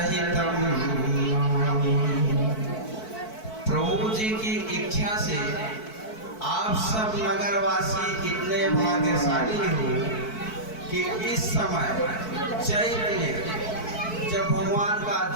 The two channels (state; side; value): late; right; 4.6 ms